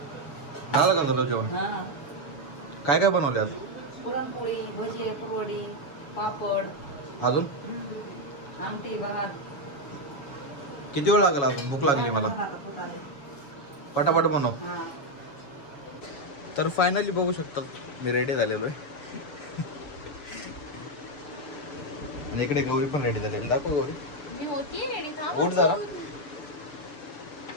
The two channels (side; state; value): right; late; 7.0 ms